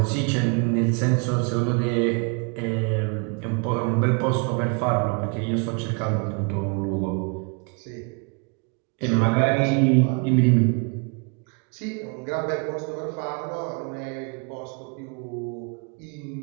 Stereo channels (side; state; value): left; quieter; 35.3 dB